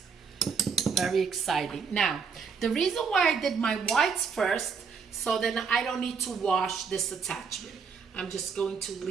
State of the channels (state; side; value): quieter; left; 5.8 dB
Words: Very exciting. Now, the reason why I did my whites first, So then I don't need to wash this attachment. I'm just going to